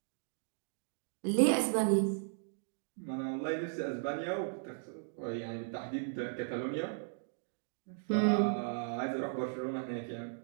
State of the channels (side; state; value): left; silent; digital silence